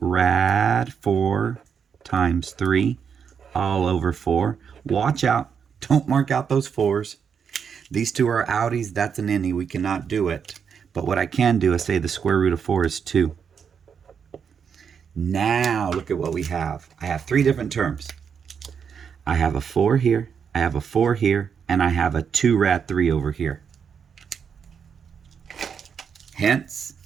4 times 3 all over 4. Watch out. Don't mark out those 4s. These 2 are outies. That's an innie. We cannot do it. But what I can do is say the square root of 4 is 2. Now, look at what we have. I have 3 different terms. I have a 4 here, I have a 4 here, and I have a 2 rad 3 over here. Hence,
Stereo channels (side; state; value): left; quieter; 6.9 dB